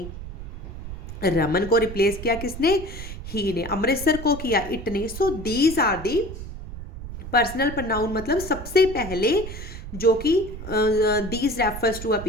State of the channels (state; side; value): noise; right; rumble, 10 dB below the sound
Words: रमन को रिप्लेस किया किसने, ही ने. अमृतसर को किया इट ने. So these are the personal pronoun. मतलब सबसे पहले जो कि these refers to a